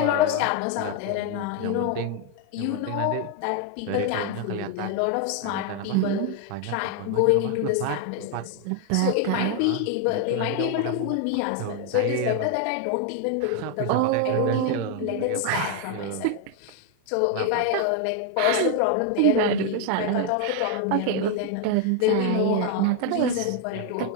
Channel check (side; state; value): both; different; correlation 0.01